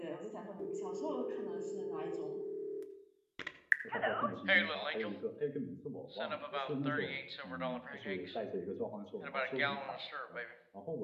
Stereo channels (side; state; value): both; identical; correlation 1.00